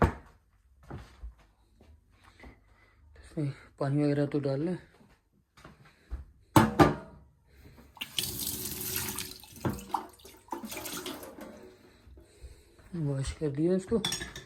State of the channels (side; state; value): both; identical; correlation 1.00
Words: पानी वगैरह तो डाल लें। वॉश कर दिया इसको।